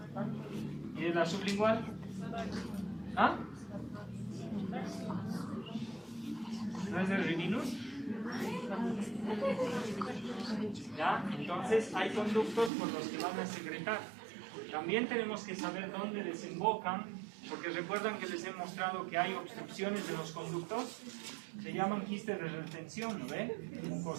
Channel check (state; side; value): drops out; left; at 12.7 s